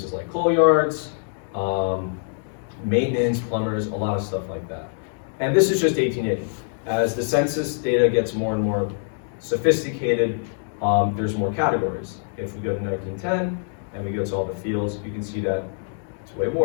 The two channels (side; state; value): right; silent; digital silence